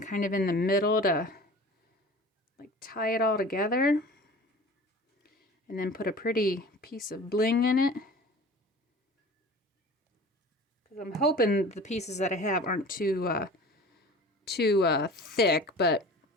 of in the middle to like tie it all together. And then put a pretty piece of bling in it. Because I'm hoping the pieces that I have aren't too thick, but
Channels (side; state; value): both; normal; correlation 0.41